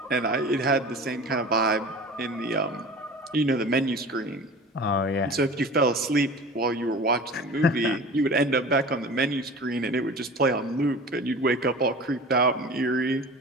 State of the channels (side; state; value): both; normal; correlation 0.38